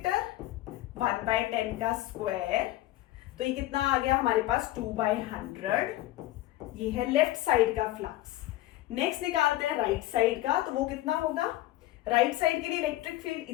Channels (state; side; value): quieter; right; 15.9 dB